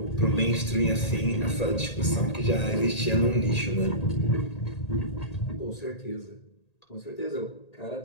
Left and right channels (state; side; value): late; right; 1.8 ms